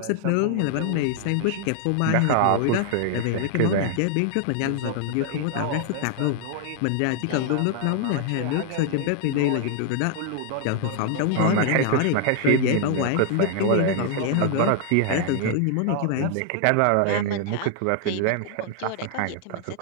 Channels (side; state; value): both; different; correlation 0.00